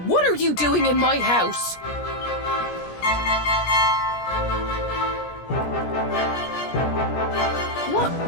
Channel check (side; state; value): right; late; 17 ms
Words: what are you doing in my house? What